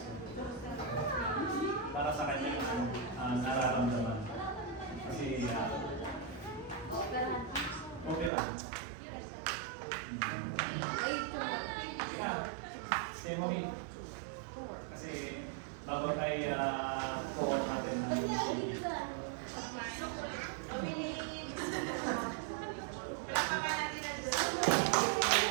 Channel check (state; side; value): drops out; left; at 8.3 s